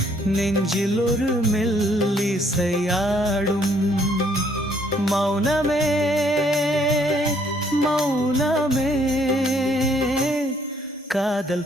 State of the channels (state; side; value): normal; both; correlation 0.66